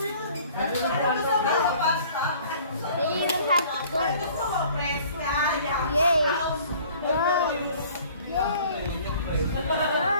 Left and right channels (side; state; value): both; inverted; correlation -0.52